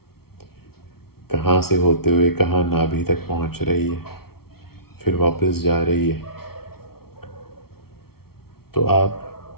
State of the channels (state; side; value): late; right; 0.94 ms